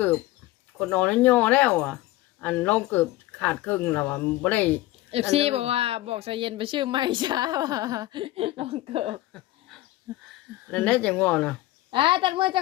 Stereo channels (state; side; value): quieter; right; 17.0 dB